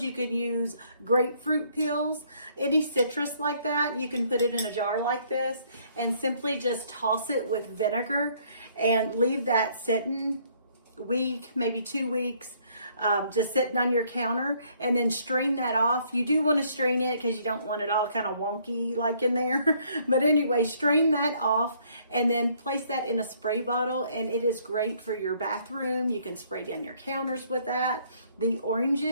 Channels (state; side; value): inverted; both; correlation -0.65